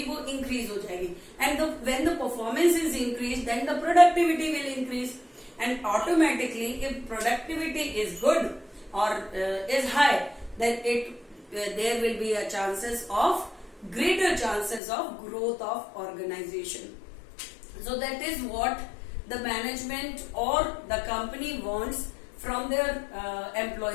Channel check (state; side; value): drops out; right; at 14.8 s